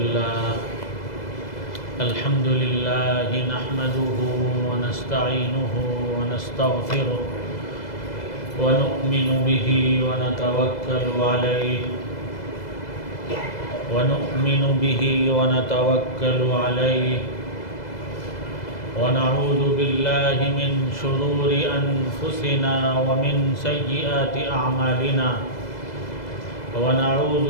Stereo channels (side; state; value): right; late; 2.0 ms